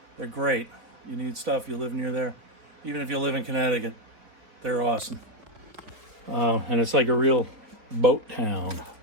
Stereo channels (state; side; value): late; left; 3.9 ms